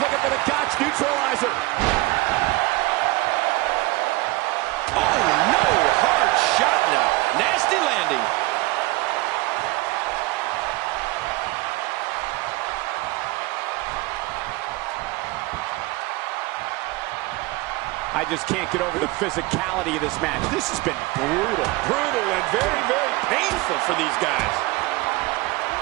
for the Gotch neutralizer. Oh, no. Hard shot now. Nasty landing. I just can't get over the physicality of this match. This has been brutal. Brutal and very, very painful for these guys.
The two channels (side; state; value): left; quieter; 21.4 dB